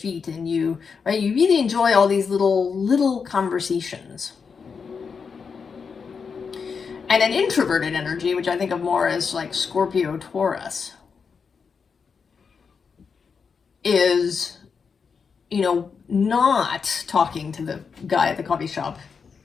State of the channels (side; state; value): right; quieter; 5.7 dB